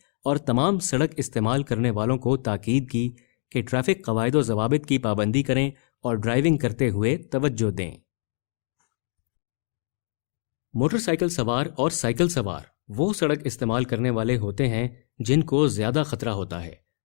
اور تمام سڑک استعمال کرنے والوں کو تاکید کی کہ ٹریفک قواعد و ضوابط کی پابندی کریں اور ڈرائیونگ کرتے ہوئے توجہ دیں۔ موٹر سائیکل سوار اور سائیکل سوار وہ سڑک استعمال کرنے والے ہوتے ہیں جن کو زیادہ خطرہ ہوتا ہے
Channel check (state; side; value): silent; right; digital silence